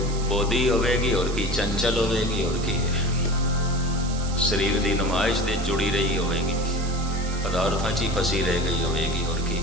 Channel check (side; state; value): right; noise; hiss, 12 dB below the sound